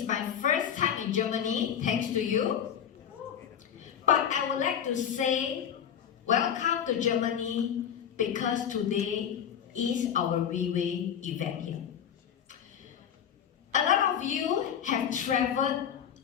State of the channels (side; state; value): right; quieter; 8.8 dB